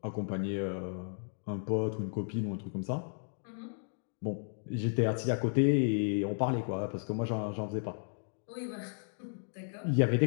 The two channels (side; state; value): right; silent; digital silence